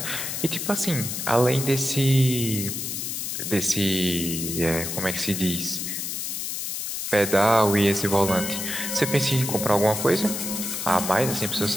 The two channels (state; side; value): noise; left; hiss, 4 dB below the sound